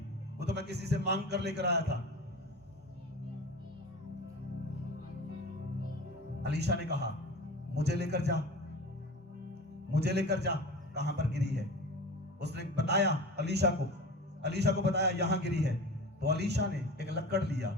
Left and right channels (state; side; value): normal; both; correlation 0.34